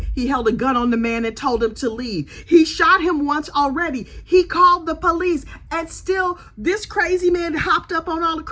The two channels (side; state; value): both; identical; correlation 1.00